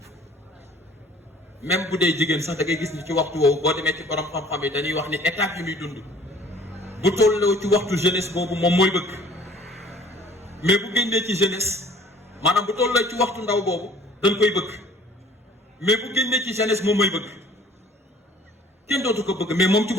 même bu dee jigéen sax da ngay gis ni ci waxtu woowu boo demee ci borom xam-xam yi dañuy wax ni étape yi muy dund bu tolloo ci waxtu jeunesse boobu moom mooy bëgg mais bu génnee ci jeunesse maanaam bu tolloo ci waxtu ndaw boobu dañ koy bëgg mais bu génnee ci jeunesse moom mooy bëgg kenn dootu ko bëgg mais moom ci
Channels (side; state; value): both; normal; correlation 0.53